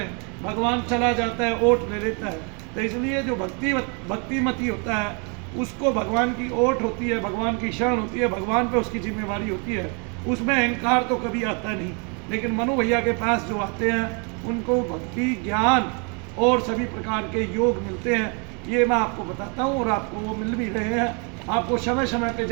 भगवान चला जाता है, ओट ले लेता है। तो इसलिए जो भक्तिमती होता है उसको भगवान की ओट होती है, भगवान की शरण होती है, भगवान पे उसकी जिम्मेवारी होती है, उसमें अहंकार तो कभी आता नहीं। लेकिन मनु भैया के पास जो आते हैं उनको भक्ति, ज्ञान और सभी प्रकार के योग मिलते हैं। ये मैं आपको बताता हूँ, और आपको वो मिल भी रहे हैं, आपको समय समय पे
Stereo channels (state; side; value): quieter; left; 35.6 dB